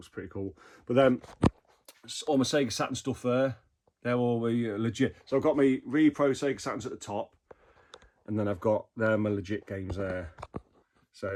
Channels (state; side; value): identical; both; correlation 1.00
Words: pretty cool. But then all my Sega Saturn stuff there, they're all legit. So I've got my Repro Sega Saturns at the top, and then I've got my legit games there.